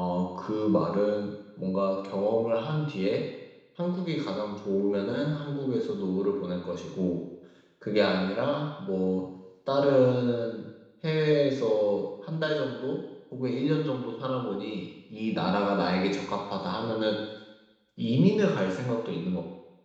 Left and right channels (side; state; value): both; identical; correlation 1.00